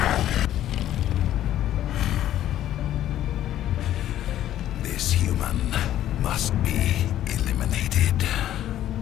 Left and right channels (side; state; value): right; quieter; 12.3 dB